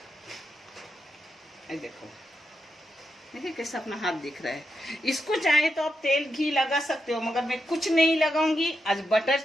देखो, देखिए कैसा अपना हाथ दिख रहा है। इसको चाहे तो आप तेल घी लगा सकते हो, मगर मैं कुछ नहीं लगाऊंगी। आज बटर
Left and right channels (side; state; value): both; normal; correlation 0.85